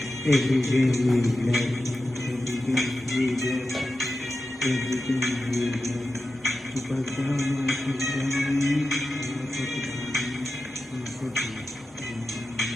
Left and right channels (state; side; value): normal; both; correlation 0.92